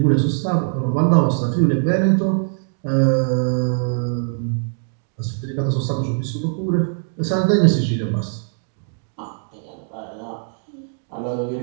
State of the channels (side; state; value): left; silent; digital silence